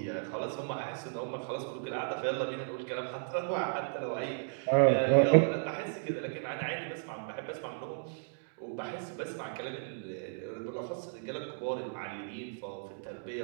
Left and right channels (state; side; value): silent; left; digital silence